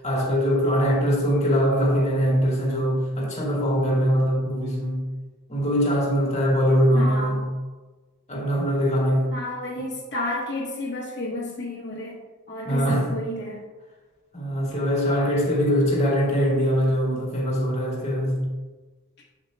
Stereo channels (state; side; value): normal; both; correlation 0.58